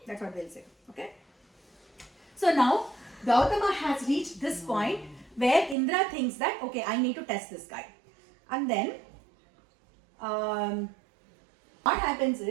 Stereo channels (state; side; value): drops out; left; at 5.8 s